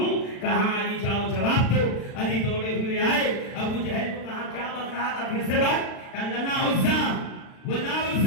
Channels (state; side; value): late; right; 36 ms